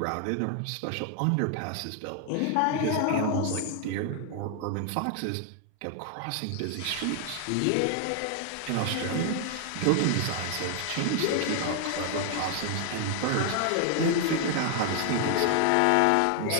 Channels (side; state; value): both; different; correlation 0.00